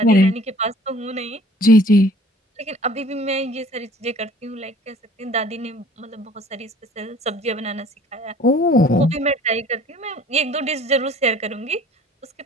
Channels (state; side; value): normal; both; correlation 0.52